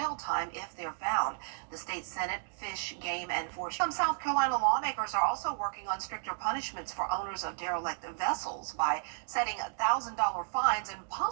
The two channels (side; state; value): left; silent; digital silence